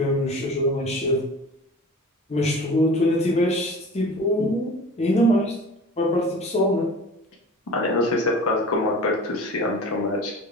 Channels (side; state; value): both; normal; correlation 0.39